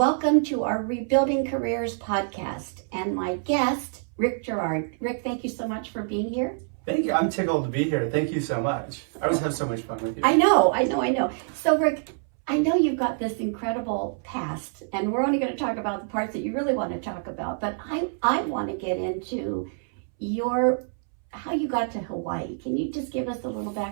to our Rebuilding Careers podcast. And my guest, Rick Girard. Rick, thank you so much for being here. Thank you. I'm tickled to be here. Thank you so much. I always have so much fun with you. I know. So Rick, I know you've got this incredible past, and we're only going to talk about the parts that you really want to talk about, but I want to get into how you got to Hawaii. Can you just give us a little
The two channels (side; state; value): left; silent; 61 dB below the other